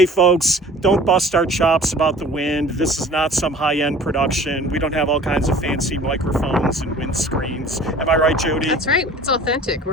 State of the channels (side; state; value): both; normal; correlation 0.46